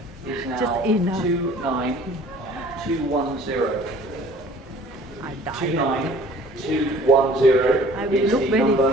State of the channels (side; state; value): both; normal; correlation 0.51